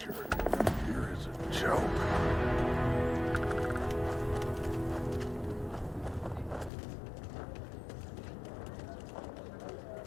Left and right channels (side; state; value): right; drops out; at 6.7 s